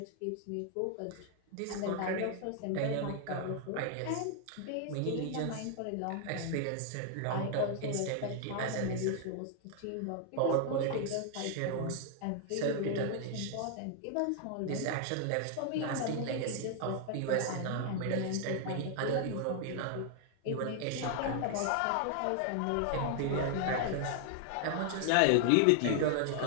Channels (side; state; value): both; different; correlation 0.00